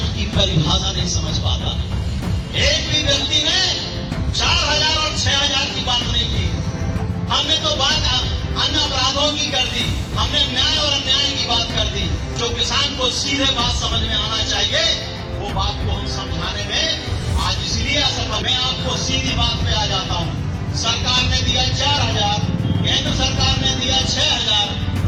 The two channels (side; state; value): both; identical; correlation 1.00